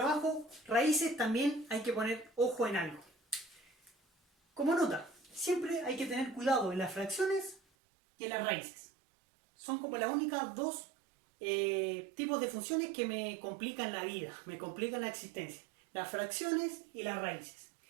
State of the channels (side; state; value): left; drops out; at 7.6 s